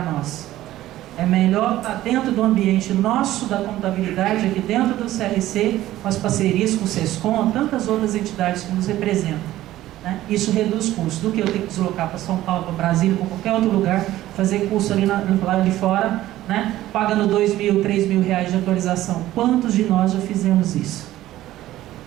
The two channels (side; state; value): left; quieter; 14.7 dB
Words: nós. É melhor estar dentro do ambiente nosso, da contabilidade, aqui dentro do CRC, com as parcerias com o SESCOM, tantas outras entidades que nos representam. Né? Isso reduz custos, do que eu ter que deslocar para São Paulo, para Brasília, para qualquer outro lugar, fazer curso ali lá de fora, né? Pagando R$2.000, R$3.000 de atualização. Quantos de nós já fizemos isso?